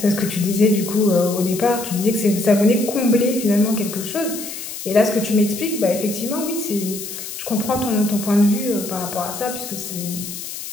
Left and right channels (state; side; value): noise; left; hiss, 9 dB below the sound